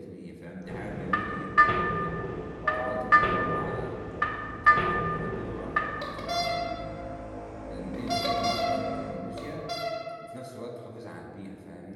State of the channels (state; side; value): identical; both; correlation 1.00